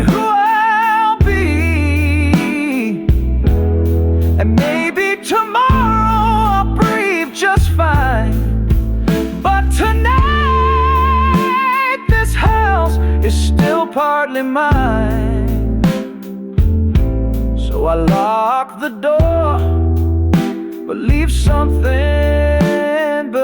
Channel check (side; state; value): both; identical; correlation 1.00